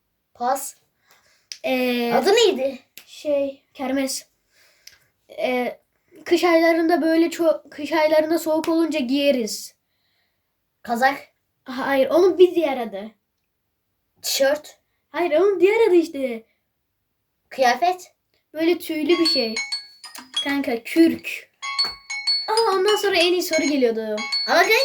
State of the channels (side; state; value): both; identical; correlation 1.00